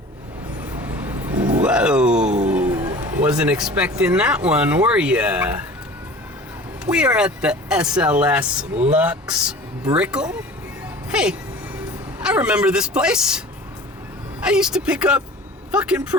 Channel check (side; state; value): both; normal; correlation 0.41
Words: Whoa, wasn't expecting that one, were ya? We are at the SLS Lux Brickle. Hey, I remember this place. I used to pick up fucking